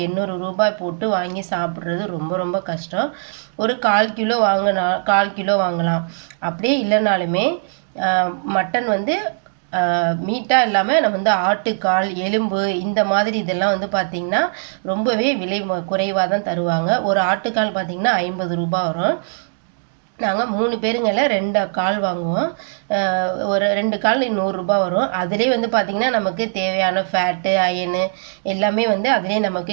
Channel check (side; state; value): left; silent; digital silence